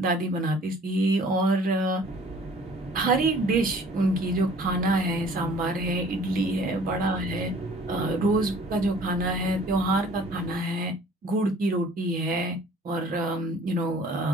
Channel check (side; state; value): both; normal; correlation 0.52